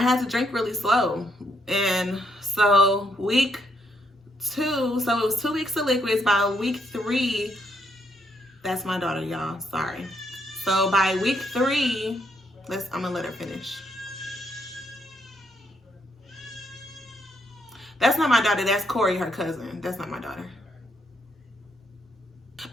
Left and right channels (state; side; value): normal; both; correlation 0.74